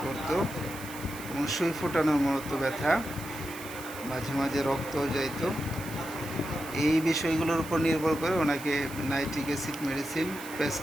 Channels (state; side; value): noise; right; hiss, 14 dB below the sound